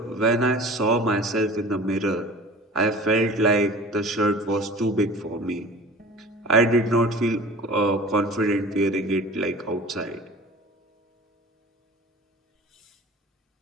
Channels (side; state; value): both; normal; correlation 0.42